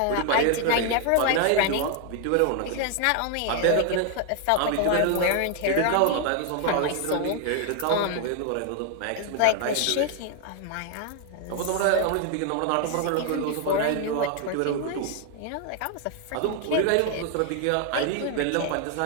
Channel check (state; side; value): different; both; correlation 0.00